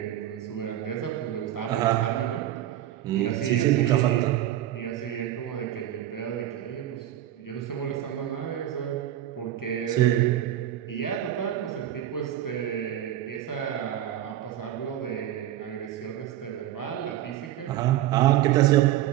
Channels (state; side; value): quieter; left; 12.4 dB